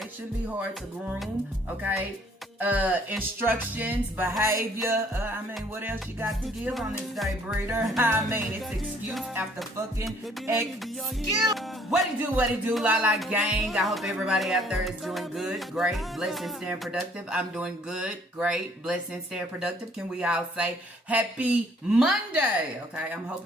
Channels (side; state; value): both; normal; correlation 0.61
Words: it shouldn't be hard to groom. Okay, instructions, behavior. I mean, what else you got to give on this day, breeder? I mean, it's excuse after fucking excuse. What it do, La La gang. I hope everybody out there is doing good, great, blessed, and staying productive. I'm doing good, great, blessed, and staying productive. Can we all say happy Monday? Okay, I'm